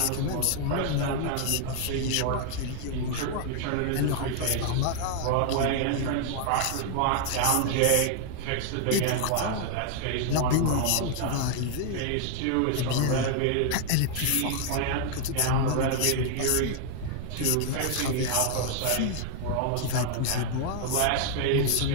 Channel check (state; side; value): different; both; correlation 0.00